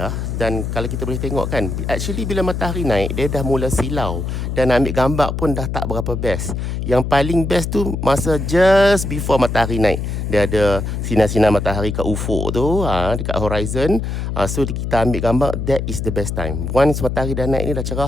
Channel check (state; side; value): noise; left; hum, 3 dB below the sound